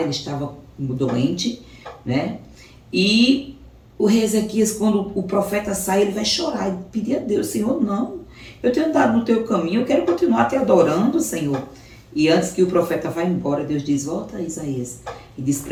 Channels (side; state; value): both; identical; correlation 1.00